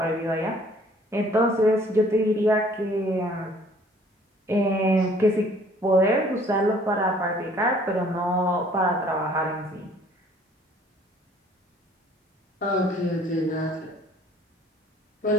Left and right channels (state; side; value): normal; both; correlation 0.57